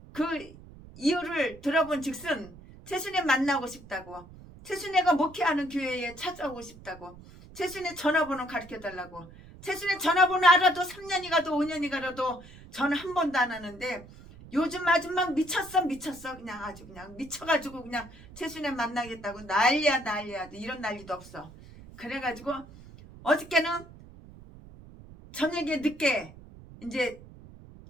그 이유를 들어본 즉슨 최순애 만나고 싶다고, 최순애가 목회하는 교회에 찾아오고 싶다고, 최순애 전화번호 가르쳐달라고. 최순애 전화번호 알아도 3년이 가도 5년이 가도 전화 한 번도 안 하는데 요즘 아주 막 미쳤어. 그냥 아주 그냥 미쳐가지고 그냥 최순애 만나겠다고 난리야. 이런 난리도 없어. 그래가지고 어저께는 저녁에 늦게 이제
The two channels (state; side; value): noise; right; rumble, 19 dB below the sound